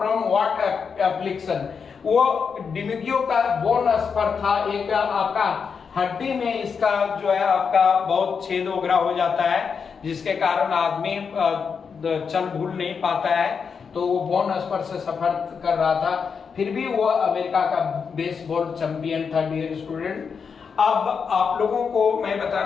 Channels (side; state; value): right; quieter; 6.0 dB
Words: व्हाट एप्लिकेशन। वो डिमुगियो का बोन स्पर था, एक आपका हड्डी में इसका जो है आपका बहुत छेद वगैरह हो जाता है जिसके कारण आदमी चल भूल नहीं पाता है, तो वो बोन स्पर से सफर कर रहा था, फिर भी वो अमेरिका का बेसबॉल चैंपियन था डियर स्टूडेंट। अब आप लोगों को मैं